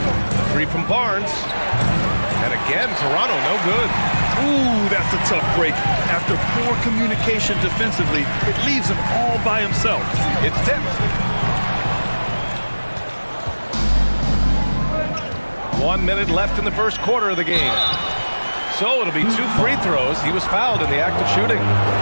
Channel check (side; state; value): both; inverted; correlation -1.00